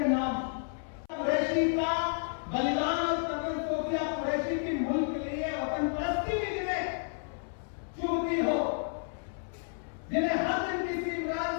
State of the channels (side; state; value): right; silent; 57 dB below the other